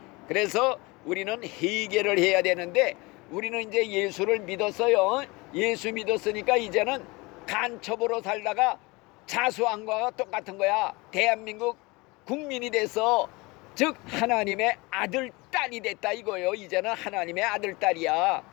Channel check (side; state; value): right; quieter; 24.5 dB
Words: 그래서 우리는 회개를 해야 되는데, 우리는 이제 예수를 믿었어요. 예수 믿었으니까 이제는 간첩으로 살다가 자수한 거와 똑같은 거야. 대한민국 국민이 돼서, 즉 하나님의 아들, 딸이 됐다 이거예요. 이제는 하나님의 아들, 딸이야.